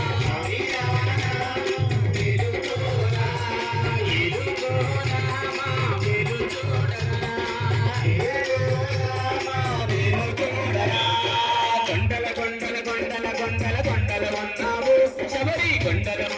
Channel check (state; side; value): identical; both; correlation 1.00